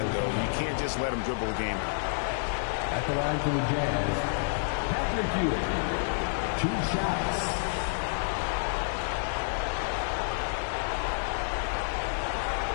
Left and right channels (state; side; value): silent; right; 58 dB below the other